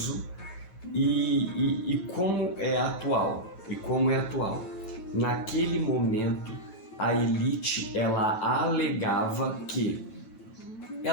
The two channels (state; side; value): late; right; 9.1 ms